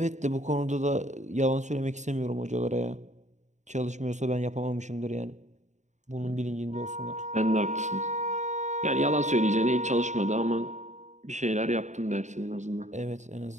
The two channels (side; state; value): left; late; 0.34 ms